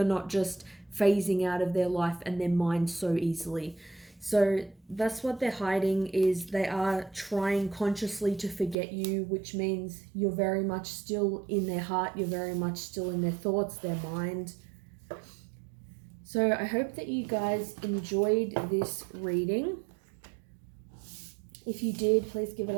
not just phasing out of their life and their mind so easily. So that's what they're hiding, is they are trying consciously to forget you, which means you're very much still in their heart. You're very much still in their thoughts, their mind. So I hope that you guys enjoyed this reading. If you did, please give it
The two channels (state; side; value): drops out; left; at 8.8 s